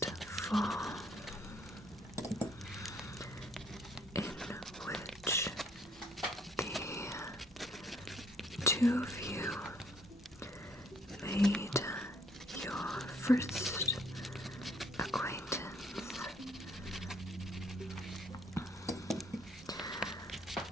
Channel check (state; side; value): normal; both; correlation 0.64